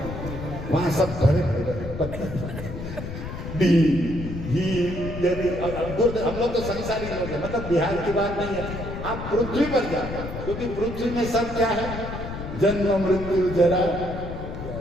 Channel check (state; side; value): noise; left; rumble, 8 dB below the sound